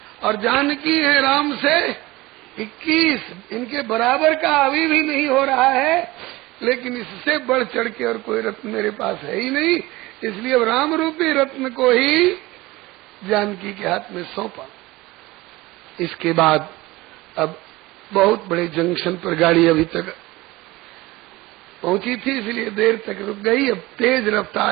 और जानकी है राम से 21। इनके बराबर का अभी भी नहीं हो रहा है। लेकिन इससे बढ़ चढ़ के और कोई रत्न मेरे पास है ही नहीं, इसलिए अब राम रूपी रत्न को ही जानकी के हाथ में सौंपा। इसके बाद अब बहुत बड़े जंक्शन पर गाड़ी अभी तक पहुंची थी, इसलिए देर तक रुक गई। अब तेज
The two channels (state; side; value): quieter; left; 20.0 dB